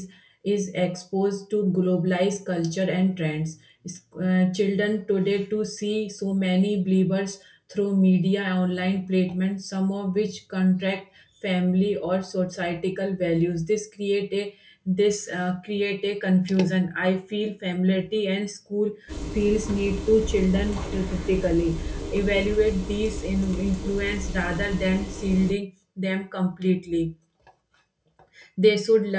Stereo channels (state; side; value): identical; both; correlation 1.00